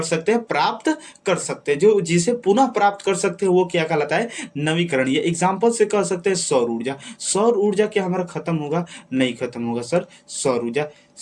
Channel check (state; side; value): identical; both; correlation 1.00